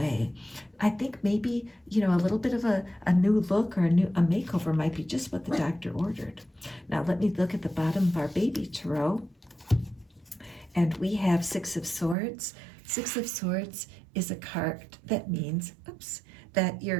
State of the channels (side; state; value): left; drops out; at 12.2 s